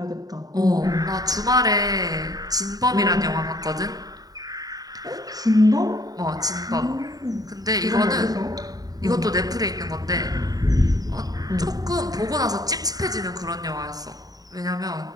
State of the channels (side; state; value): left; late; 0.18 ms